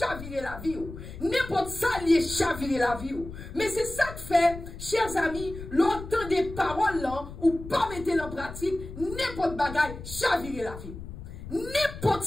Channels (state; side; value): noise; left; rumble, 12 dB below the sound